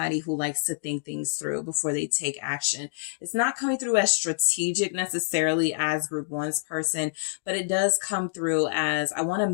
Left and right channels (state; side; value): silent; right; digital silence